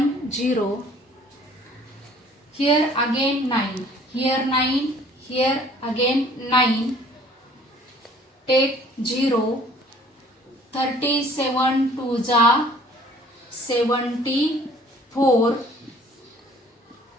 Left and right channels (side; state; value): both; normal; correlation 0.54